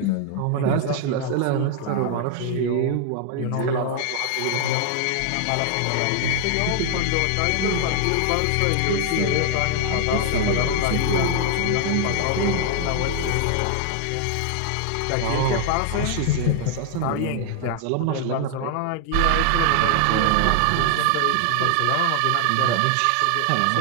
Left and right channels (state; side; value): different; both; correlation 0.00